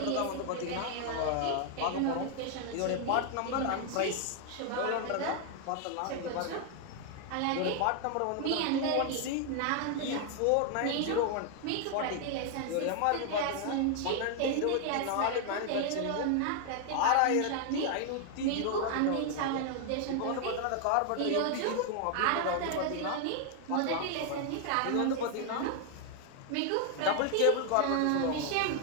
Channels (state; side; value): different; both; correlation 0.00